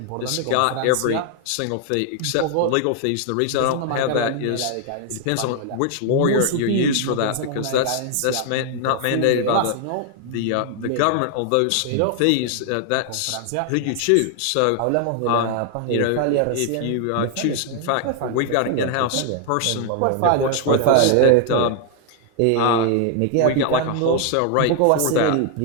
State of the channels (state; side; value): different; both; correlation 0.00